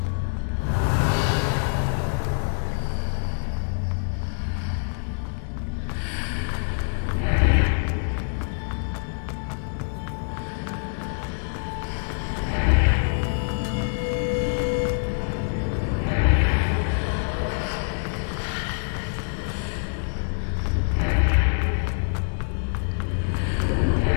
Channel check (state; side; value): silent; right; 62 dB below the other